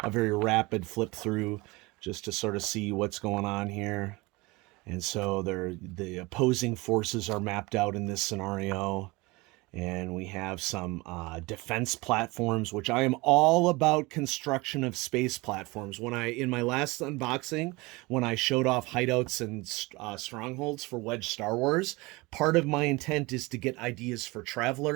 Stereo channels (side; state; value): left; quieter; 23.6 dB